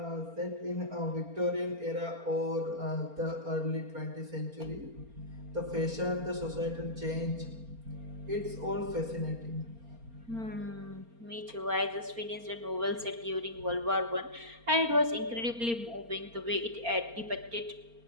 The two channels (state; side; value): late; left; 4.3 ms